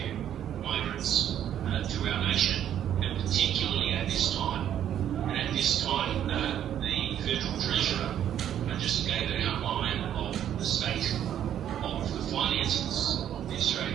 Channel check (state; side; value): quieter; left; 10.4 dB